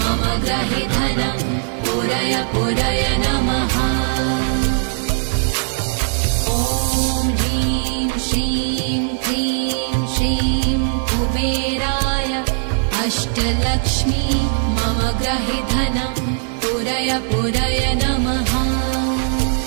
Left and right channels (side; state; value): left; silent; digital silence